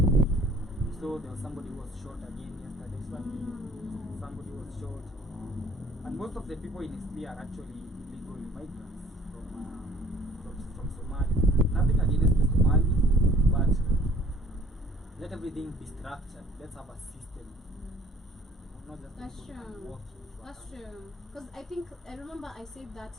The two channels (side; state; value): both; normal; correlation 0.54